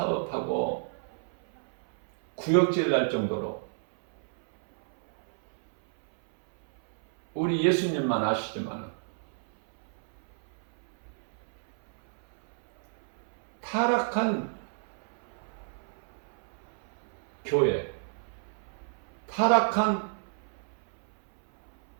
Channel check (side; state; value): left; silent; 58 dB below the other